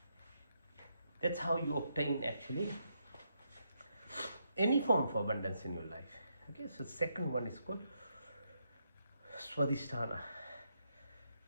That's how you obtain actually any form of abundance in your life. Okay, so second one is called Swadhisthana,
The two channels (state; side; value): inverted; both; correlation -0.79